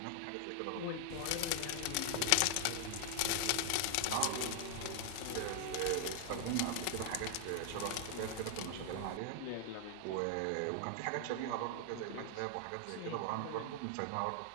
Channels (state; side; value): different; both; correlation 0.00